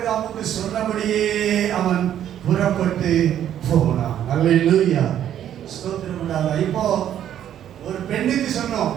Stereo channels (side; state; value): left; quieter; 10.6 dB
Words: சொன்னபடியே அவன் புறப்பட்டு போனான். அல்லேலூயா. ஸ்தோத்திரம் உண்டாதா. இப்போ ஒரு பெண்ணுக்கு சொன்னோம்,